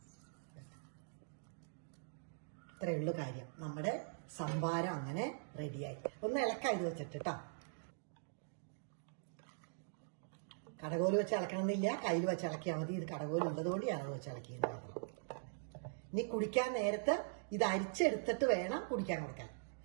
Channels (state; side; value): silent; left; digital silence